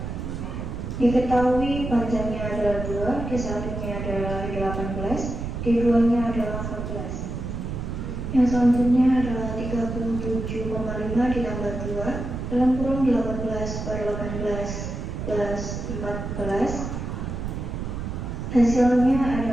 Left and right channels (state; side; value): noise; right; rumble, 5 dB below the sound